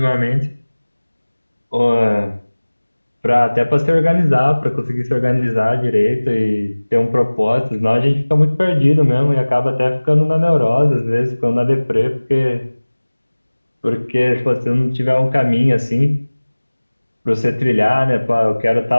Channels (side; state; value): both; inverted; correlation -1.00